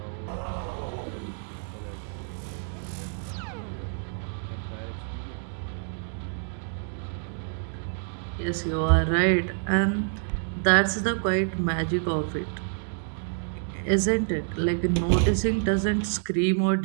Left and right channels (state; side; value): silent; left; 60 dB below the other